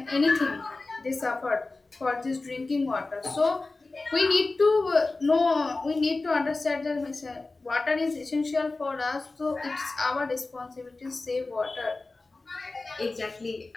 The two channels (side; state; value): right; quieter; 3.4 dB